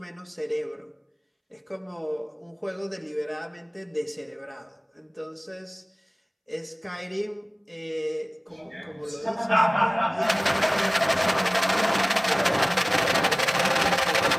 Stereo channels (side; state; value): both; identical; correlation 1.00